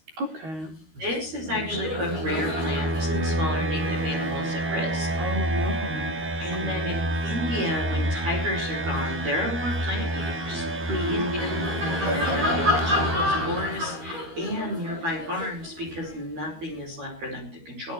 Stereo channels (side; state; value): left; late; 13 ms